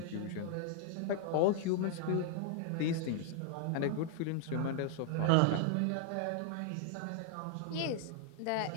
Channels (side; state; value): both; different; correlation 0.00